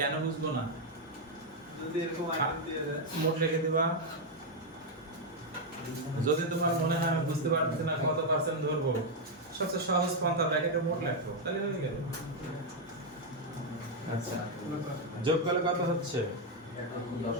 কেন বুঝবো না? যদি এরকম আইটেম দিয়ে দেয় মোট লিখে দিবা। যদি তোমার মনে হয় আমি বুঝতে পারছি না কত পার্সেন্ট ধরবো, সবচেয়ে সহজ পন্থা ব্র্যাকেটে মোট লিখো, তাহলে হয়ে গেল। আচ্ছা, যোগ করলে কত হচ্ছে?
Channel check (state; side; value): normal; both; correlation 0.01